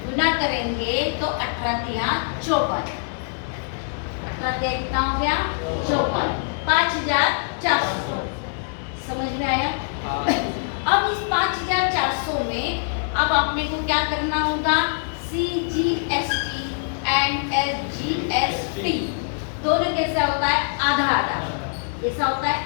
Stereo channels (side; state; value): right; silent; 63 dB below the other